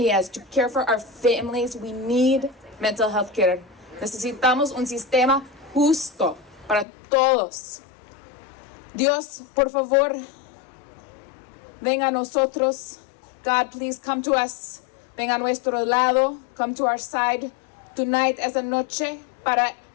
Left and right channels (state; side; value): drops out; right; at 6.9 s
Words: To care for our families, we need mental health care. Necesitamos un sistema justo para todos. Dios, por favor, venga a nosotros. God, please come to us. Venga a nuestro lado. Come to our side tonight, esa noche, para